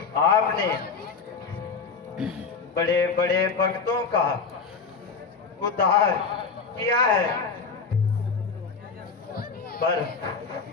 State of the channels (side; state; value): right; quieter; 5.2 dB